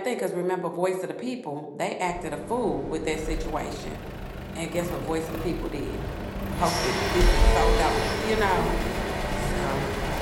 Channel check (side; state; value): both; identical; correlation 1.00